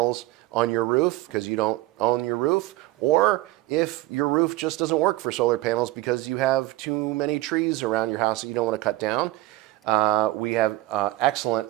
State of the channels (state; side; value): quieter; left; 17.6 dB